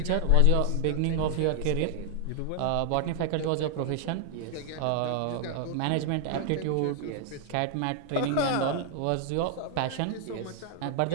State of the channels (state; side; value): different; both; correlation 0.00